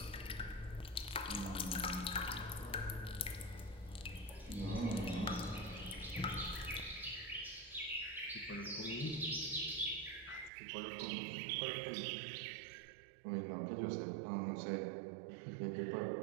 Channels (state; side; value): drops out; left; at 10.5 s